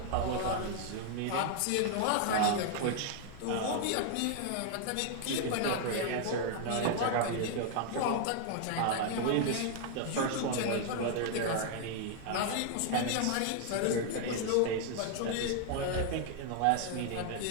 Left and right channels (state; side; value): different; both; correlation 0.00